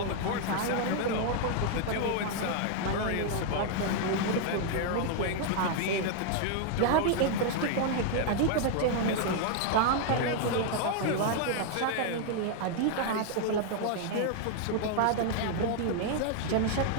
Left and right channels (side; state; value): both; different; correlation 0.00